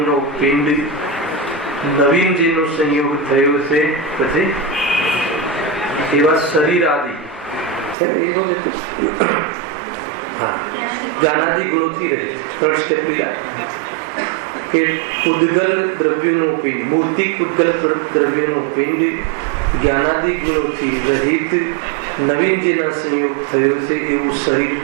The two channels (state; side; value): drops out; left; at 8.0 s